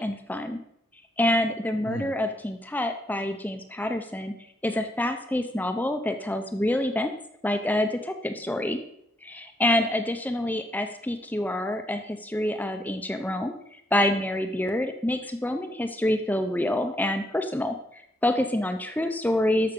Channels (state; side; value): normal; both; correlation 0.75